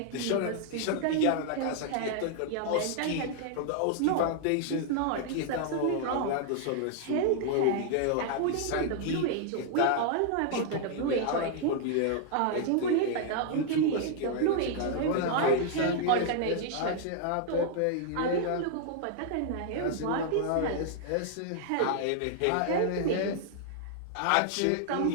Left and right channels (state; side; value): different; both; correlation 0.00